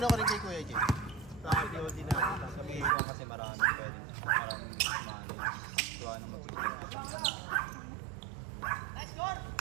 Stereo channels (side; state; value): left; drops out; at 3.0 s